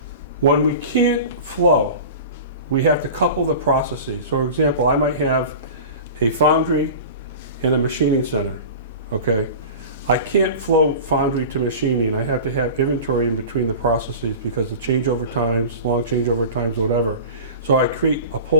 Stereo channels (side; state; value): both; inverted; correlation -0.35